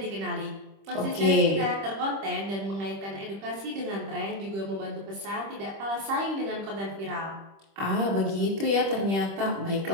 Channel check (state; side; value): late; left; 25 ms